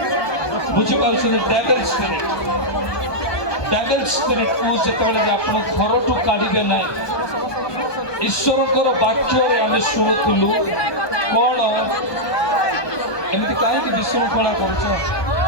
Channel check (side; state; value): right; late; 1.2 ms